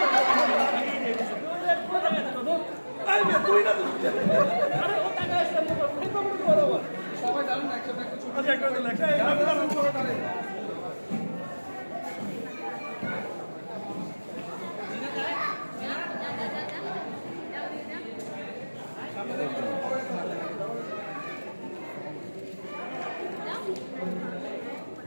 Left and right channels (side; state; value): both; inverted; correlation -1.00